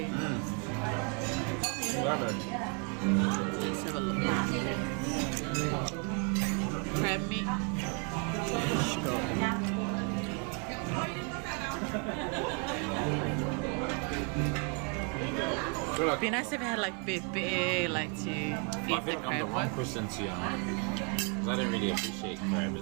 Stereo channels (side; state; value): left; quieter; 37.5 dB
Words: Let's have a look. Crab meat. It'd be nice if it had like bit like to feed I the think I'm crab the wrong with. person to because I don't really appreciate crab